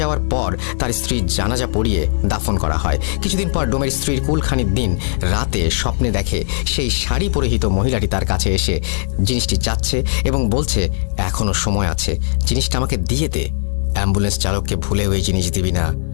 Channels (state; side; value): silent; right; 67 dB below the other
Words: যাওয়ার পর তার স্ত্রীর জানাজা পড়িয়ে দাফন করা হয়। কিছুদিন পর ডোমের স্ত্রীর কুলখানির দিন রাতে স্বপ্নে দেখে সেই শাড়ি পরিহিত মহিলাটি তার কাছে এসে জিনিসটি চাচ্ছে এবং বলছে এখনো সময় আছে, জিনিসটা আমাকে দিয়ে দে। অ্যাম্বুলেন্স চালককে ভুলে ওই জিনিস দিবি না,